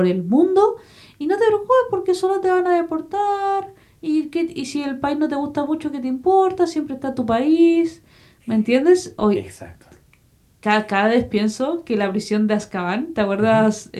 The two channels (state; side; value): identical; both; correlation 1.00